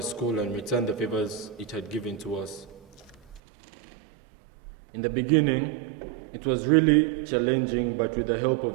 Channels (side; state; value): left; drops out; at 3.4 s